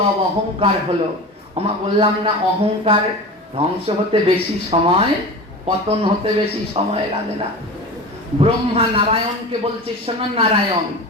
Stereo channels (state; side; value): normal; both; correlation 0.31